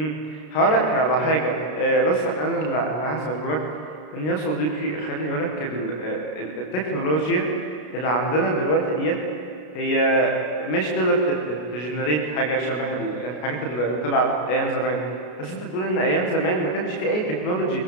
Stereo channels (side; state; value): right; late; 33 ms